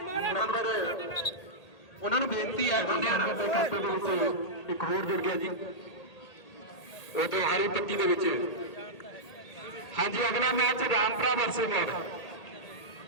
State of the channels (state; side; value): late; right; 1.8 ms